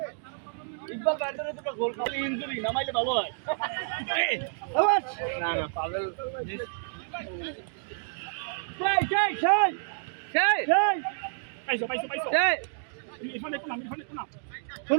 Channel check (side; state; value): left; silent; digital silence